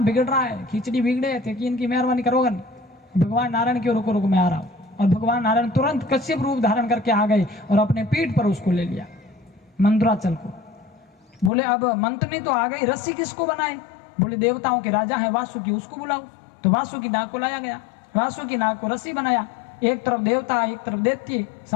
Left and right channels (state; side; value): drops out; right; at 11.5 s